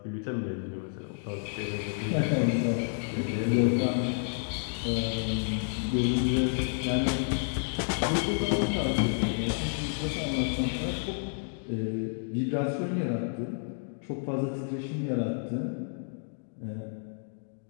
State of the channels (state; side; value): silent; right; digital silence